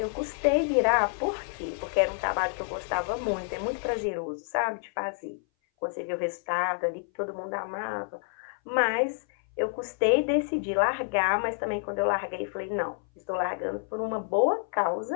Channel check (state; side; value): silent; right; 58 dB below the other